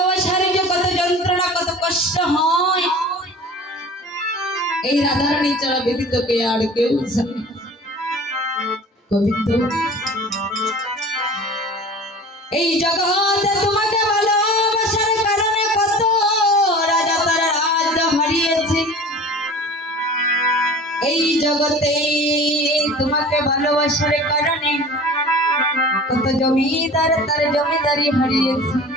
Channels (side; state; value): both; normal; correlation 0.41